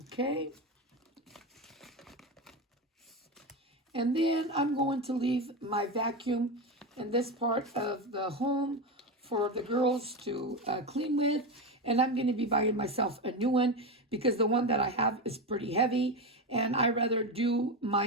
Okay. And then I'm going to leave my vacuum in this part of the home for the girls to clean with. And I'm going to be buying myself a new one, because the one that I have is pretty heavy. And I rather do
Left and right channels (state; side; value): normal; both; correlation 0.16